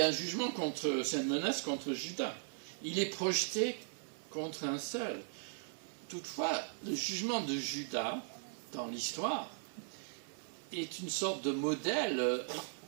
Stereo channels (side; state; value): left; silent; digital silence